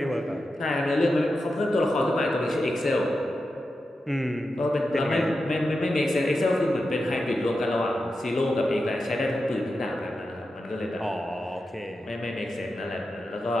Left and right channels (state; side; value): normal; both; correlation 0.90